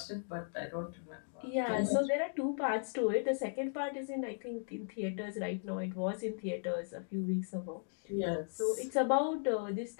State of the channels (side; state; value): right; silent; digital silence